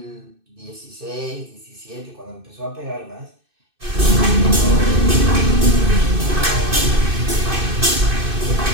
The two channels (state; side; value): late; left; 2.6 ms